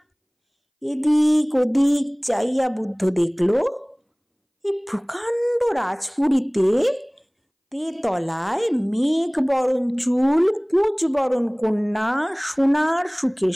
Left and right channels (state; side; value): identical; both; correlation 1.00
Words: এদিক ওদিক চাইয়া বুদ্ধ দেখল এই প্রকাণ্ড রাজপুরীতে তেতলায় মেঘ বরণ চুল কুঁচ বরণ কন্যা সোনার সুখের